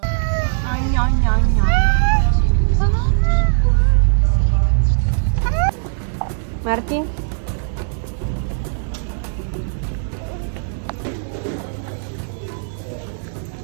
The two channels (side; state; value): left; silent; digital silence